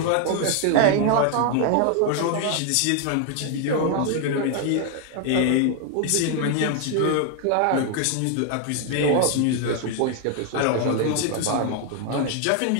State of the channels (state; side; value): different; both; correlation 0.00